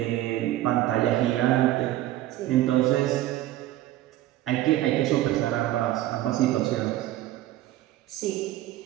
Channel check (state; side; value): quieter; left; 14.6 dB